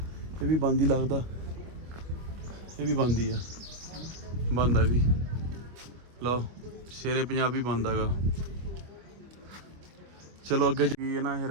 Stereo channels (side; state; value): left; late; 25 ms